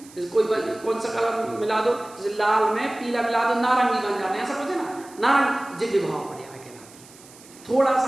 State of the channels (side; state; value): right; noise; hiss, 22 dB below the sound